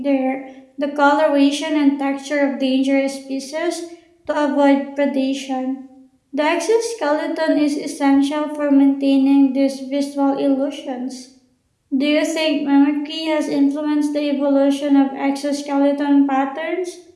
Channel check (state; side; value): identical; both; correlation 1.00